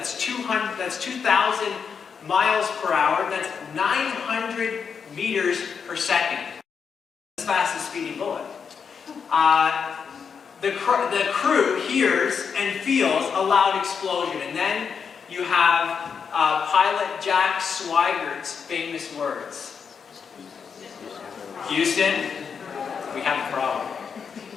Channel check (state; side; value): quieter; right; 6.4 dB